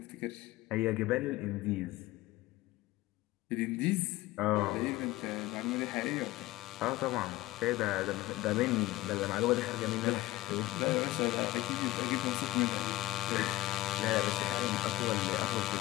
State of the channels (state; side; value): quieter; right; 17.4 dB